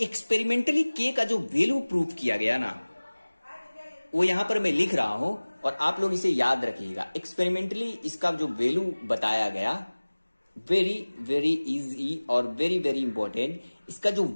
एक्सपेरिमेंटली के का जो वैल्यू प्रूव किया गया ना, वो यहां पर मैं लिख रहा हूं और आप लोग इसे याद रखिएगा। एक्सपेरिमेंटली इसका जो वैल्यू बताया गया, वेरी वेरी इजी और वेरी वेरी इंपॉर्टेंट। इसका जो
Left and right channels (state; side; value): inverted; both; correlation -1.00